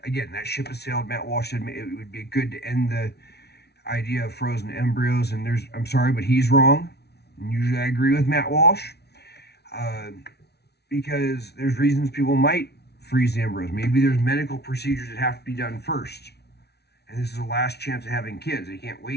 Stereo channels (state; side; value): late; right; 0.49 ms